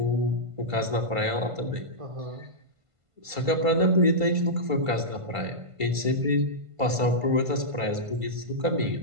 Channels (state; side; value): late; left; 1.5 ms